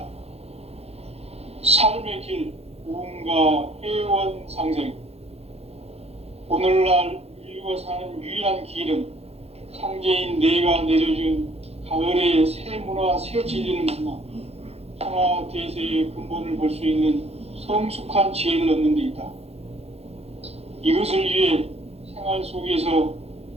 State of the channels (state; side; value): late; left; 0.30 ms